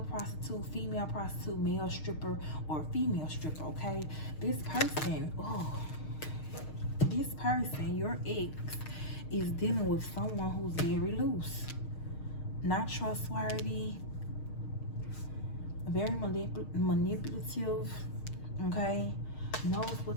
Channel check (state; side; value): late; right; 6.5 ms